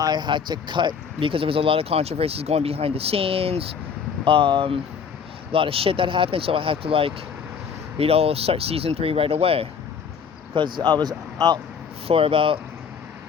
had to cut, because there was a lot of controversies going behind the scenes. A lot of shit that happened, so I had to start season 3 right away. Because I was out for about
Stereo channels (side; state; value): right; quieter; 6.6 dB